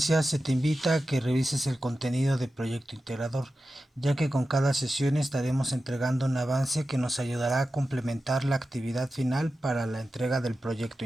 se te invita a que revises el contenido del proyecto integrador, ya que con cada sesión estaremos entregando un avance que nos ayudará a complementar la actividad final para la entrega del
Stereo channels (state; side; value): normal; both; correlation 0.92